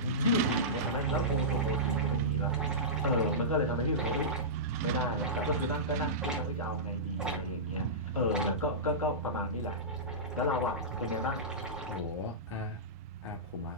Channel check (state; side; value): normal; both; correlation -0.18